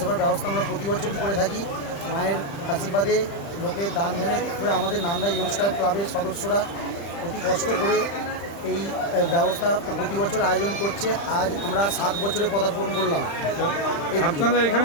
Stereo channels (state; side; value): late; right; 35 ms